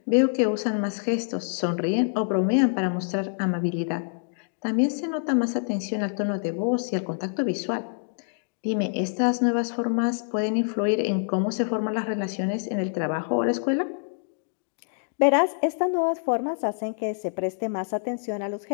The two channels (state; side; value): silent; right; digital silence